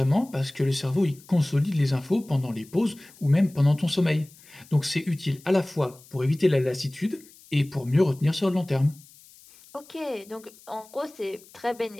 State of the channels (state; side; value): noise; left; hiss, 24 dB below the sound